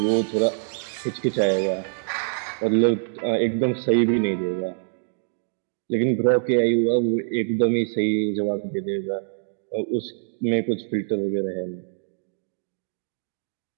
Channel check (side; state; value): left; silent; digital silence